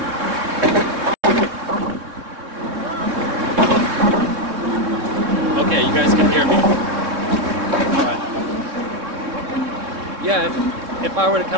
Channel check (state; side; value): late; left; 3.6 ms